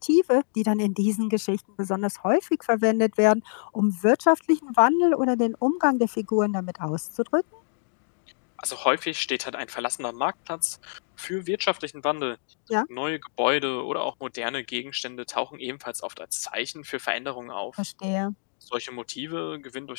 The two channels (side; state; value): right; silent; digital silence